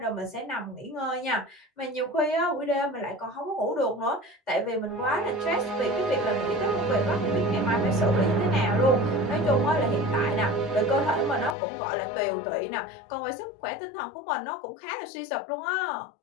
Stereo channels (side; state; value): right; drops out; at 11.6 s